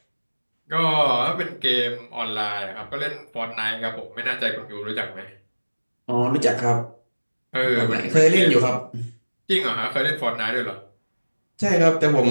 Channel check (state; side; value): inverted; both; correlation -1.00